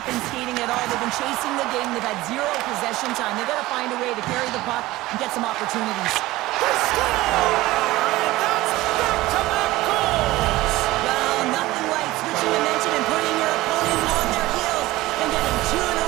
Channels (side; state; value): left; quieter; 18.1 dB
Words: been skating at all. They've been chasing the game. They've had zero possession time. They've got to find a way to carry the puck and get some opportunities. They score! And that's back-to-back goals! Well, nothing like switching dimension and putting your opponent on their heels and getting two in a